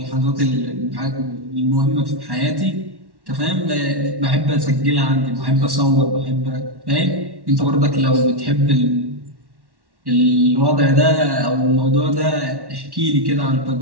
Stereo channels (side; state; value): left; late; 1.1 ms